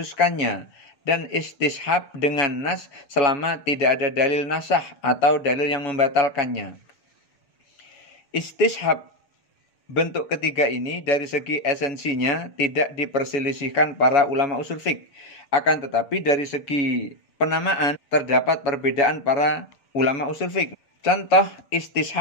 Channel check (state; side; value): late; right; 7.1 ms